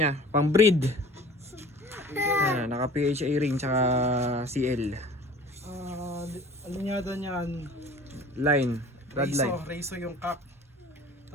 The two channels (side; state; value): both; normal; correlation 0.45